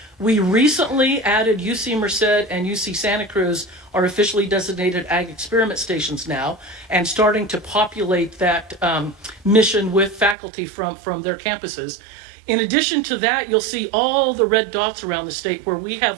We recently added UC Merced and UC Santa Cruz are officially designated ag experiment stations now, and starting to populate that mission with faculty from their campuses. In addition to that, you'll see all the red dots around the state where we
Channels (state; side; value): drops out; left; at 10.4 s